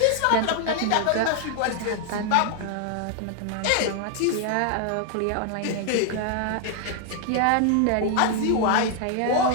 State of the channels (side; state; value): both; different; correlation 0.00